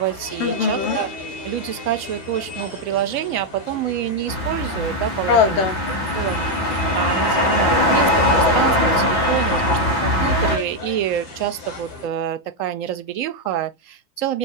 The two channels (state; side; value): late; right; 9.3 ms